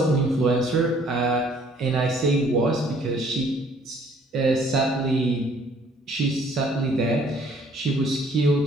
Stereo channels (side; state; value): both; normal; correlation 0.59